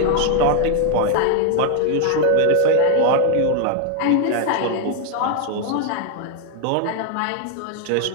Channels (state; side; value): different; both; correlation 0.00